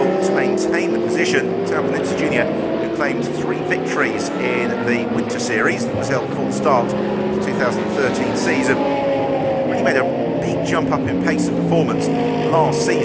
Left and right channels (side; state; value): both; identical; correlation 1.00